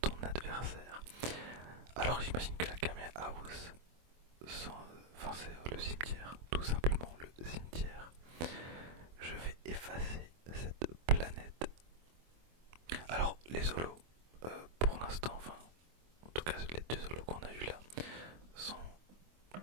ton adversaire. Alors j'imagine que la Kame House, c'est le cimetière, tout simplement le cimetière. Je vais effacer cette planète. Alors les holos, pour l'instant, en tout cas les 2 holos qu'on a eu là, sont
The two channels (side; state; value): left; late; 24 ms